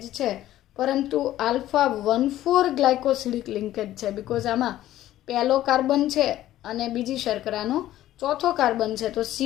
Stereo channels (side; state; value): right; quieter; 13.8 dB